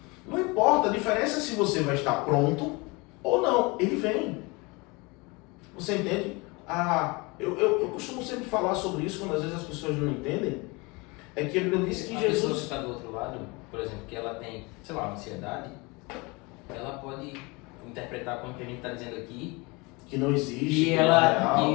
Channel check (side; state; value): right; quieter; 26.5 dB